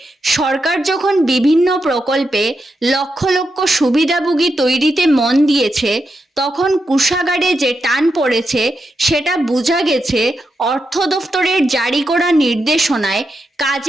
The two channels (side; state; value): both; normal; correlation 0.86